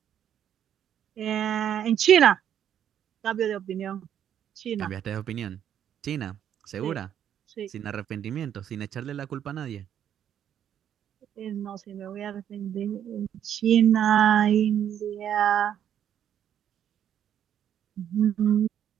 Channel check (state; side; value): quieter; left; 9.7 dB